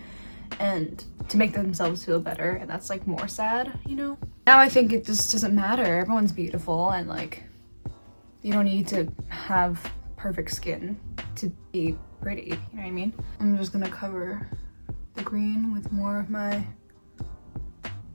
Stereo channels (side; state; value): both; inverted; correlation -1.00